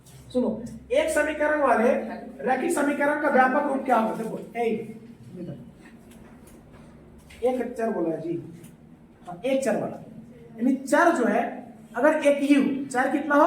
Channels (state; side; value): identical; both; correlation 1.00